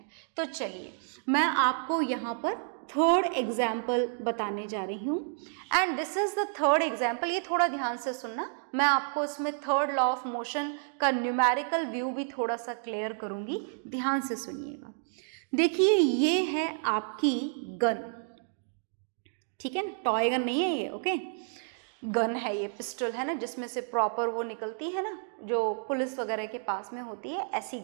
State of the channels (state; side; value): silent; left; digital silence